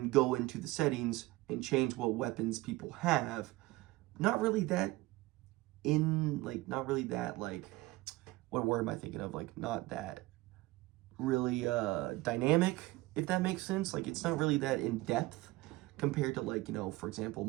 go into the settings and change what weapons people have. Not really that what word am I thinking of? Like, not that really dynamic, if that makes sense. Like, it's not really that in depth compared to, like, for example,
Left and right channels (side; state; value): left; quieter; 20.0 dB